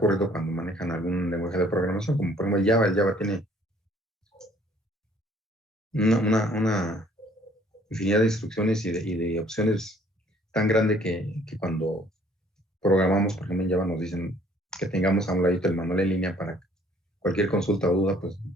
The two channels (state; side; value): normal; both; correlation 0.59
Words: cuando manejan algún lenguaje de programación, como por ejemplo el Java. El Java tiene una infinidad de instrucciones y de opciones tan grande que cuando programamos, por ejemplo en Java, nos dicen que tengamos a un ladito el manual en línea para cualquier consulta o duda, pues